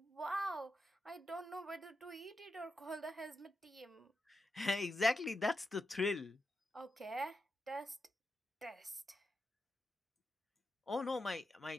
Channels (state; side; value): normal; both; correlation 0.88